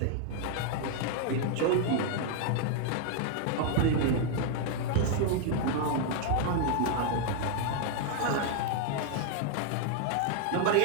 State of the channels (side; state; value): both; different; correlation 0.00